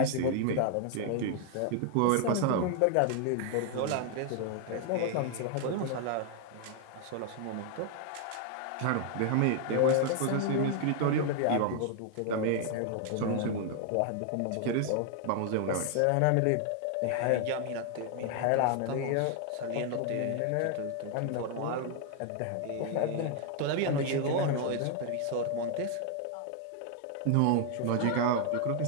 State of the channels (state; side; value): different; both; correlation 0.00